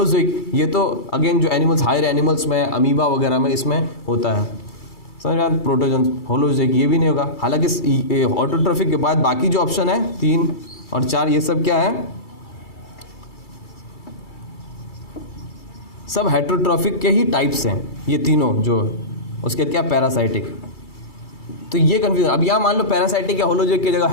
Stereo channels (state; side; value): late; right; 2.3 ms